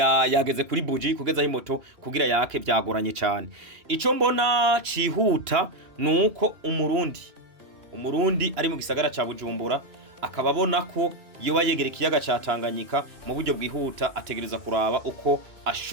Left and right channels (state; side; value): late; left; 2.9 ms